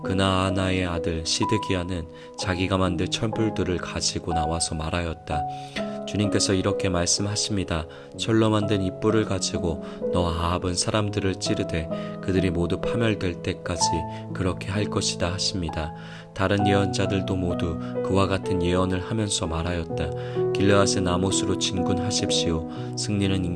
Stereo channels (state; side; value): identical; both; correlation 1.00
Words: 그나아나의 아들 시드기야는 자기가 만든 촛불들을 가지고 나와서 말하였다. 주님께서 이렇게 말씀하십니다. 철로 만든 이 뿔을 가지고 너 아합은 사람들을 찌르되 그들이 모두 파멸될 때까지 그렇게 할 것이다 하십니다. 다른 예언자들도 모두 그와 같은 예언을 하면서 말하였다. 길르앗의 나못으로 진군하십시오. 승리는